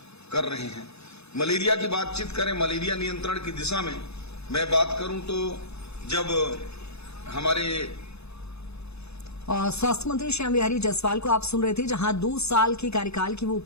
कर रहे हैं। मलेरिया की बातचीत करें, मलेरिया नियंत्रण की दिशा में मैं बात करूं तो जब हमारे स्वास्थ्य मंत्री श्याम बिहारी जायसवाल को आप सुन रहे थे, जहां 2 साल के कार्यकाल की वो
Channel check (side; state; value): right; late; 0.79 ms